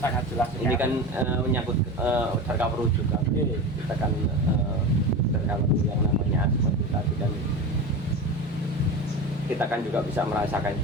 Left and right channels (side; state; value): both; normal; correlation 0.27